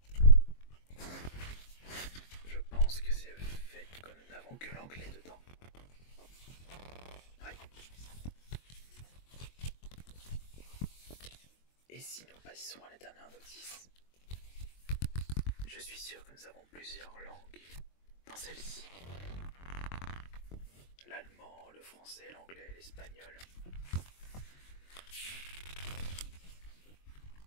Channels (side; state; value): right; late; 22 ms